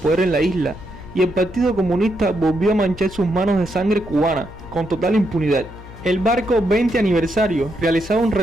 en la isla, y el Partido Comunista volvió a manchar sus manos de sangre cubana, con total impunidad. El barco 20 aniversario realizaba un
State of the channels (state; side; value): noise; left; hum, 17 dB below the sound